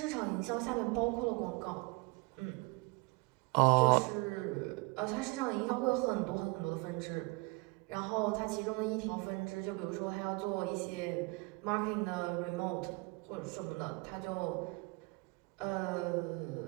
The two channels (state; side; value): quieter; left; 27.7 dB